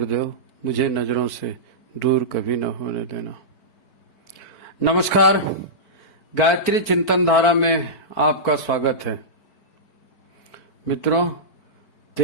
मुझे नजरों से दूर कभी न होने देना। नमस्कार, गायत्री चिंतन धारा में आपका स्वागत है। मित्रों,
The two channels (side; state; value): right; late; 4.5 ms